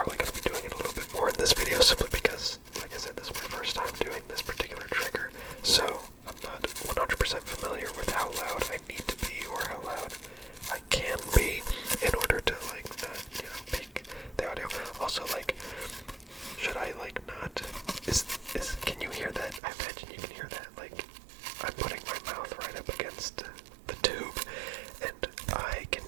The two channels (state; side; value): drops out; left; at 19.6 s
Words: going to be doing it a little bit more in this video, simply because, like I said, this is my first time doing this particular trigger, so I'm not 100% familiar with how loud I need to be or how loud I can be in order to like not, you know, peak the audio. Also, like, should I like not? Can you hear that? I imagine you can hear that. Like, I'm putting my mouth right up against the tube, and I can